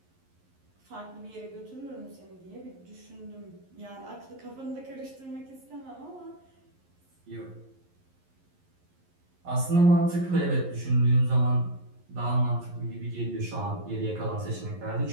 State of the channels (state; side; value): late; left; 11 ms